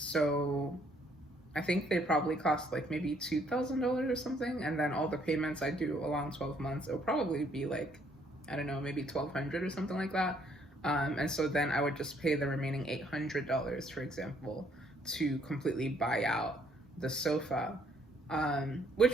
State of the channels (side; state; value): both; normal; correlation 0.66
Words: I think they probably cost like maybe $2,000 or something, and then all the payments I do along 12 months, it'll probably be like, I don't know, maybe 1,200 or something like that. And so then I would just pay the remaining $800, for example, to completely buy out the sofa,